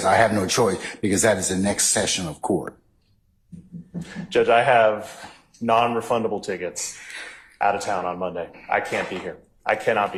I have no choice because that is the next session of court. Judge, I have non-refundable tickets out of town on Monday. I can't be here. I cannot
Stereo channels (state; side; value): identical; both; correlation 1.00